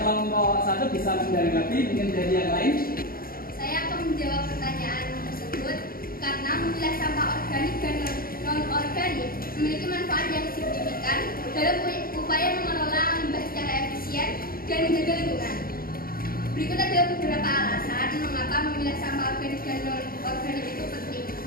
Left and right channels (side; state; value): right; late; 0.42 ms